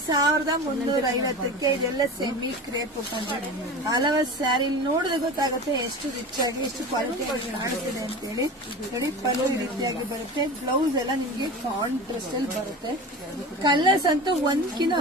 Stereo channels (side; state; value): both; normal; correlation 0.32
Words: 1350ಕ್ಕೆ. ಇದೆಲ್ಲ ಸೆಮಿ ಕ್ರೇಪ್ ಉಟ್ಕೊಂಡ್ರೆ ಹಲವು ಸ್ಯಾರಿ ನೋಡಿದ್ರೆ ಗೊತ್ತಾಗುತ್ತೆ ಎಷ್ಟು ರಿಚ್ ಆಗಿ ಎಷ್ಟು ಕ್ವಾಲಿಟಿ ಕಾಣಿಸ್ತಿದೆ ಅಂತ ಹೇಳಿ. ನೋಡಿ ಪಲ್ಲು ಈ ರೀತಿಯಾಗಿ ಬರುತ್ತೆ. ಬ್ಲೌಸ್ ಎಲ್ಲ ನಿಮಗೆ ಕಾಂಟ್ರಾಸ್ಟ್ ಅಲ್ಲಿ ಬರುತ್ತೆ. ಕಲರ್ಸ್ ಅಂತೂ ಒಂದ್ಕಿನ